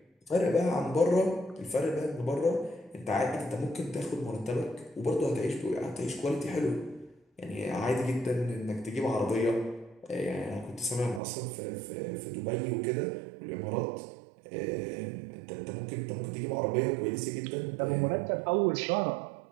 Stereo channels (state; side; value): drops out; left; at 11.2 s